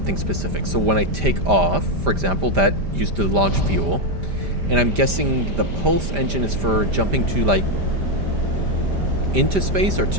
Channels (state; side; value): late; left; 5.1 ms